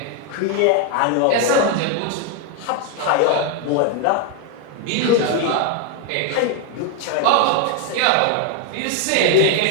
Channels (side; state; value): both; different; correlation 0.01